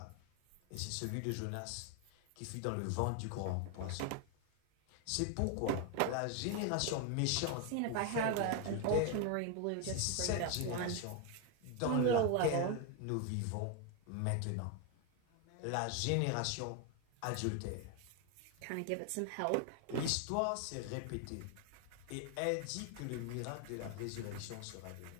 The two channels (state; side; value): different; both; correlation 0.01